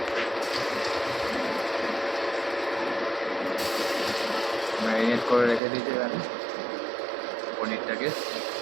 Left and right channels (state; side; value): drops out; left; at 5.6 s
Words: ম্যারিনেট করে রেখে দিয়েছে এখানে পনিরটাকে।